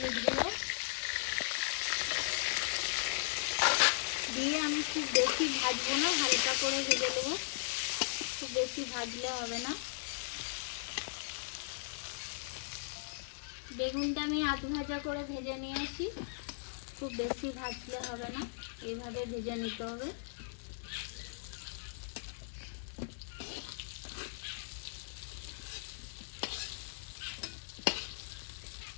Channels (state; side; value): silent; right; 53 dB below the other